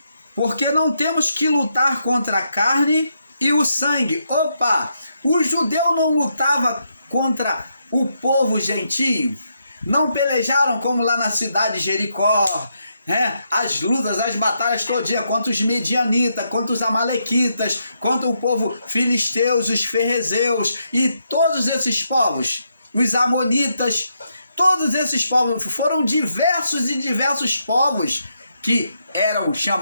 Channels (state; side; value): inverted; both; correlation -0.80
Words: Porque não temos que lutar contra a carne e o sangue. O judeu não lutava contra o povo gentio. Não pelejaram como lá na cidade de Jericó, as lutas, as batalhas todinhas contra os medianitas, contra os amalequitas, contra o povo filisteus, os ferrezeus e todos esses povos, os amonitas. Todos esses povos foram diversos povos que eram